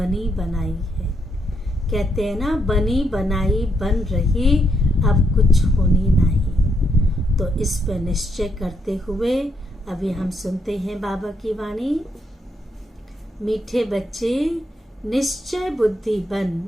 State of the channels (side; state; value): both; normal; correlation 0.78